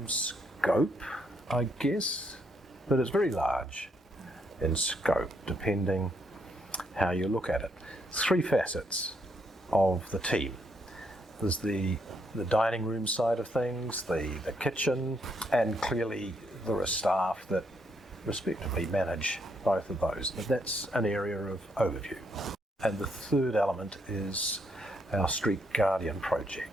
scope, I guess, but it's very large in scope, depending how you look at it. Three facets of the team. There's the dining room side of things, the kitchen, and clearly there are staff that respectively manage both of those. But that's an area of overview. And the third element is our Street Guardian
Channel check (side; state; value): both; normal; correlation 0.75